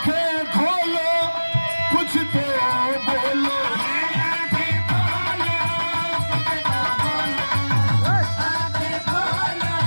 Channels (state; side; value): inverted; both; correlation -1.00